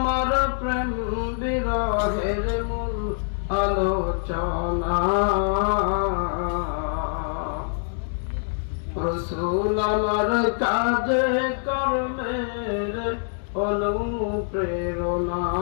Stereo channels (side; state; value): right; silent; 62 dB below the other